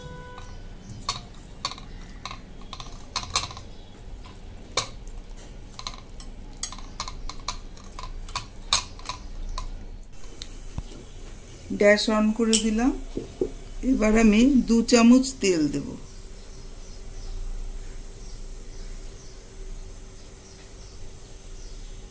গ্যাস অন করে দিলাম। এবার আমি 2 চামচ তেল দেব।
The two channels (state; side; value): identical; both; correlation 1.00